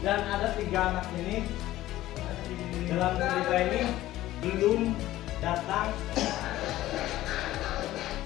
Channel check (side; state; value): right; quieter; 15.2 dB